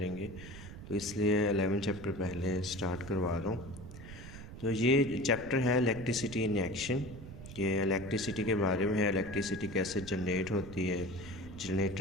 तो इसलिए 11 चैप्टर पहले स्टार्ट करवा रहा हूँ। तो ये चैप्टर है इलेक्ट्रिसिटी इन एक्शन, कि इलेक्ट्रिसिटी के बारे में है। इलेक्ट्रिसिटी कैसे जनरेट होती है,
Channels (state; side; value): noise; right; rumble, 13 dB below the sound